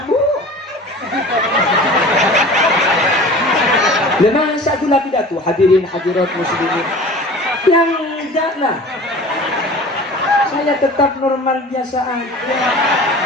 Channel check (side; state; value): both; normal; correlation 0.40